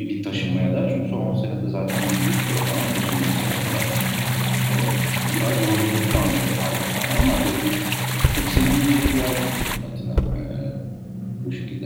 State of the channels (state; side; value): identical; both; correlation 1.00